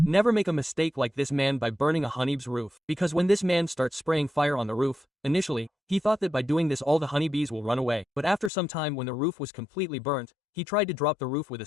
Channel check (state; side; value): drops out; right; at 8.5 s